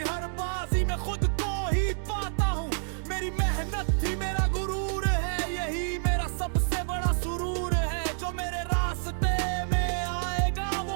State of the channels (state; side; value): silent; left; 59 dB below the other